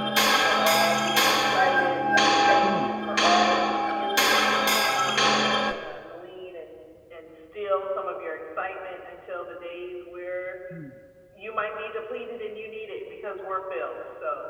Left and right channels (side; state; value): both; identical; correlation 1.00